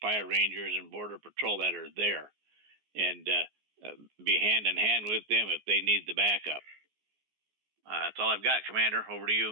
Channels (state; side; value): late; left; 14 ms